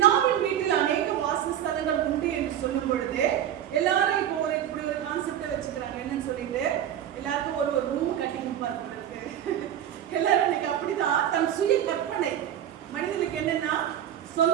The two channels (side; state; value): left; quieter; 10.6 dB